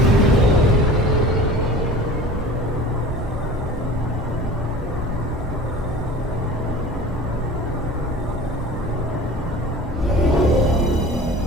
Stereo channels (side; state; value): both; normal; correlation 0.40